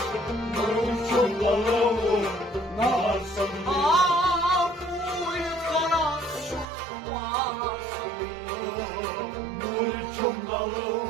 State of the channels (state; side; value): drops out; left; at 6.7 s